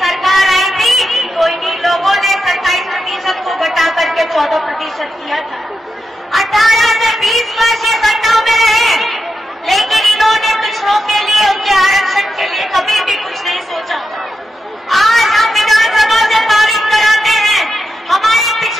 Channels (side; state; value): both; normal; correlation 0.88